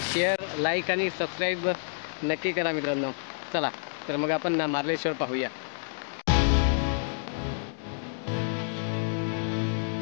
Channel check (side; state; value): right; silent; digital silence